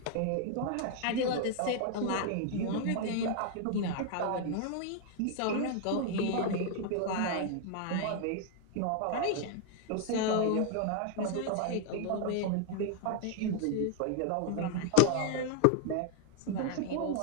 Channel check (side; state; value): both; different; correlation 0.00